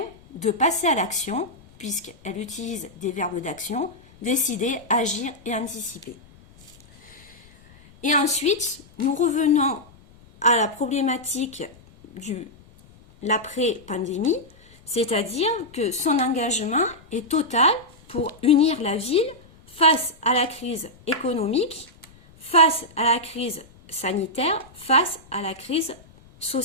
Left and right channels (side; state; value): left; noise; rumble, 25 dB below the sound